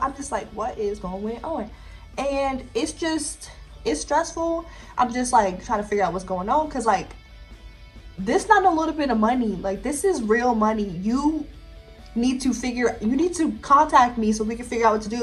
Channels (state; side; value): identical; both; correlation 1.00